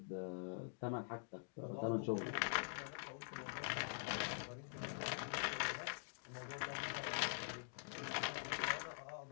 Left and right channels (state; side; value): silent; right; digital silence